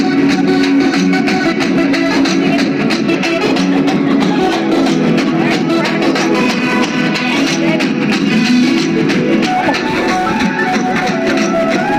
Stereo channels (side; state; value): both; identical; correlation 1.00